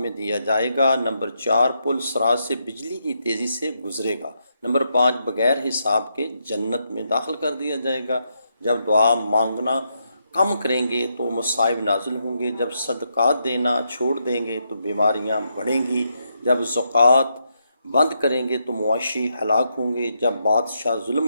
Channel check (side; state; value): both; inverted; correlation -0.80